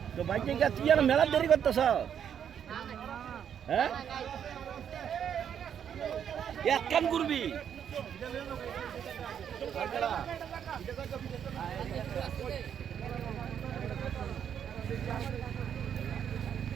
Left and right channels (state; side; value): quieter; left; 8.6 dB